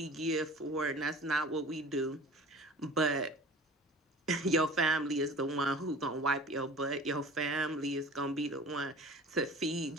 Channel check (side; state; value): both; normal; correlation 0.42